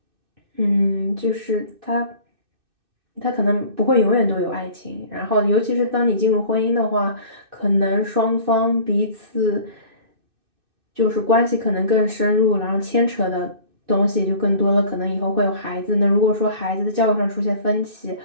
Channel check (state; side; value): late; left; 2.6 ms